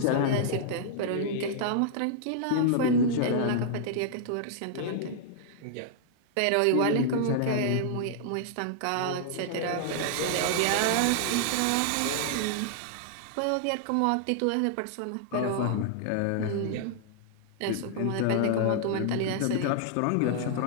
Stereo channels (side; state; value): both; different; correlation -0.01